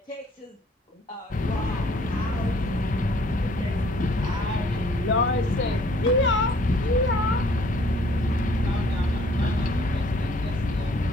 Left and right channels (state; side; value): normal; both; correlation 0.59